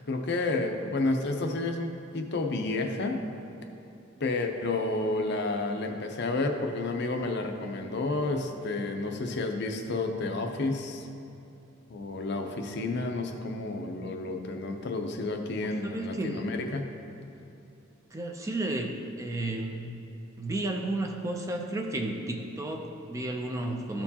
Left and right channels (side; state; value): both; normal; correlation 0.44